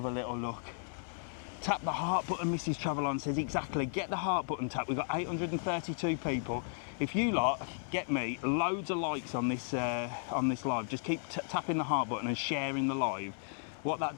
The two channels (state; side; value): silent; right; digital silence